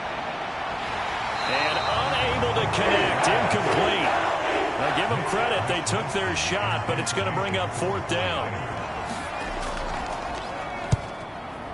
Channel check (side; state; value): both; identical; correlation 1.00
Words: And unable to connect. Incomplete. Now give them credit. They took their shot, but it's going to bring up 4th down.